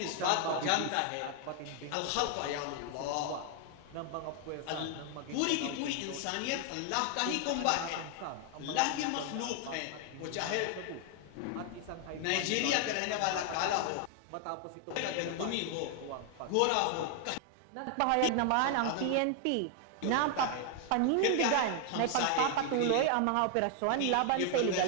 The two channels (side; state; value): both; different; correlation 0.00